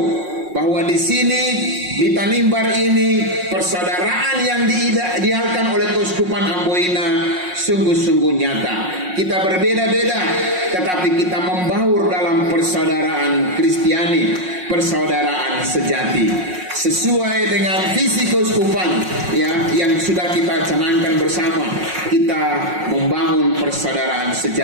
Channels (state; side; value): late; left; 5.5 ms